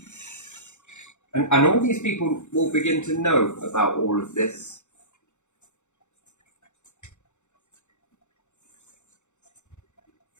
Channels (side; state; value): right; late; 0.84 ms